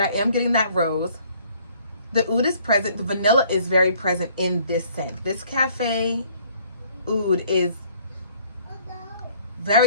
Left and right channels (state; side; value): inverted; both; correlation -0.61